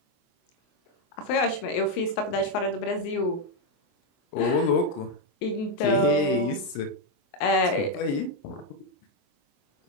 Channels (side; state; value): right; late; 24 ms